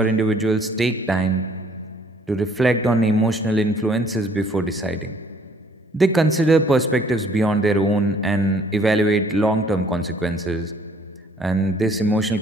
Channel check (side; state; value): both; normal; correlation 0.60